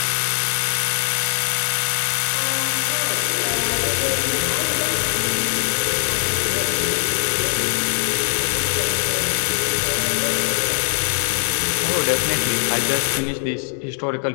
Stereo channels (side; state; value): right; silent; digital silence